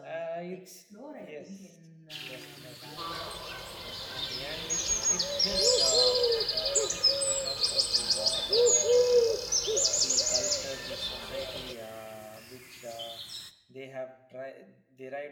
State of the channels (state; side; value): identical; both; correlation 1.00